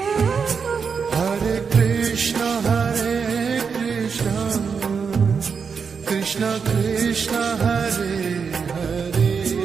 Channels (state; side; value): quieter; left; 5.9 dB